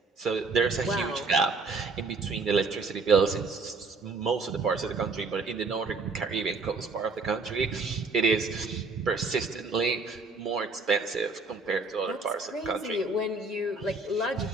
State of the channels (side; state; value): left; quieter; 3.9 dB